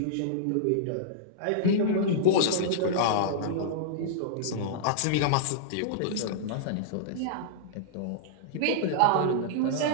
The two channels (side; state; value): both; different; correlation -0.02